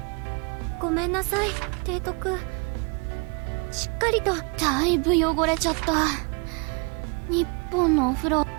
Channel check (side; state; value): left; quieter; 32.4 dB